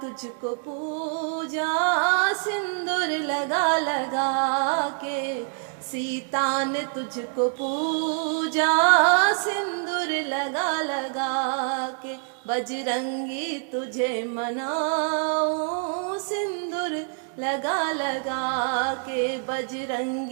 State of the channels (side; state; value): left; silent; 57 dB below the other